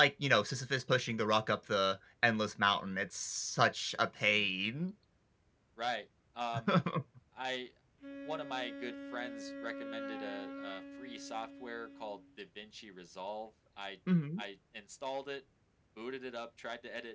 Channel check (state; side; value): identical; both; correlation 1.00